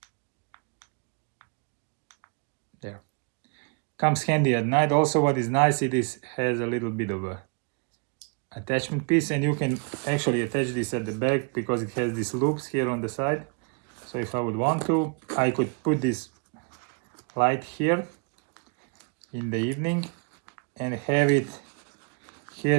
There. Comes handy at night. Also, what is nice, it has a little bit of a attachment piece, and you can actually attach this at the back because it has these loops here on the side. So if I would want to, I could put this light here in the evening and have it here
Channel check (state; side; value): quieter; left; 35.1 dB